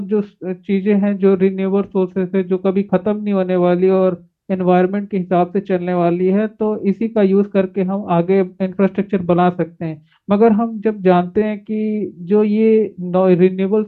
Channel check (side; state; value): both; identical; correlation 1.00